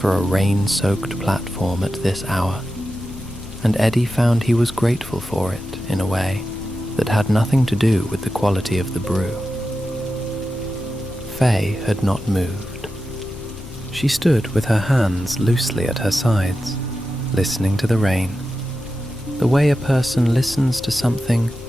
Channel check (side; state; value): left; noise; rumble, 16 dB below the sound